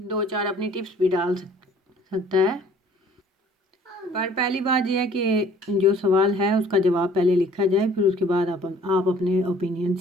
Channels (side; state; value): both; normal; correlation 0.54